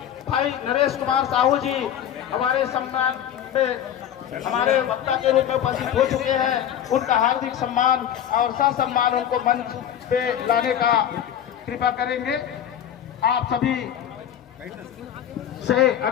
भाई नरेश कुमार साहू जी हमारे सम्मान में हमारे वक्ता के रूप में उपस्थित हो चुके हैं। उनका हार्दिक सम्मान और ससम्मान उनको मंच पे लाने का कृपा करेंगे। आप सभी से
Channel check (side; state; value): right; quieter; 10.1 dB